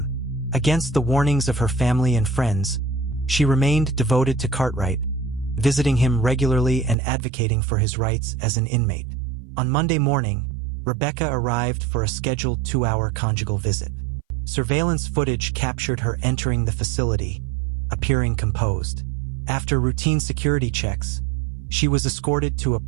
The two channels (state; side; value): drops out; left; at 7.0 s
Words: Against the warnings of her family and friends, she remained devoted to Cartwright, visiting him regularly and advocating for his rights as an inmate. On Monday morning, Rebecca arrived for a scheduled 2-hour conjugal visit. Surveillance footage captured her entering the facility, appearing composed. After routine security checks, she was escorted to a